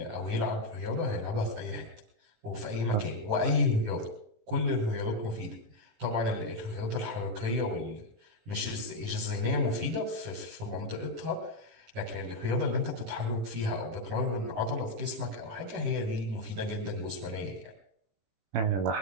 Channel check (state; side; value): late; left; 18 ms